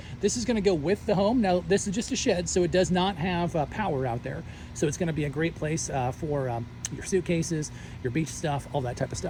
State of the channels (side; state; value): both; identical; correlation 1.00